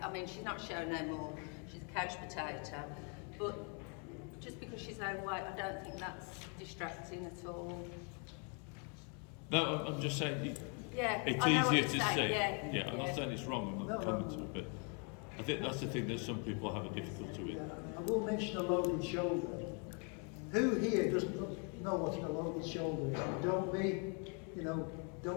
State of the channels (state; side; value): quieter; right; 38.1 dB